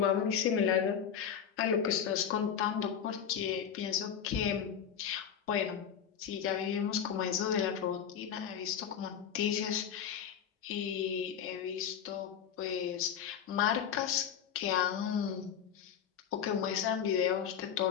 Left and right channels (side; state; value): right; quieter; 8.2 dB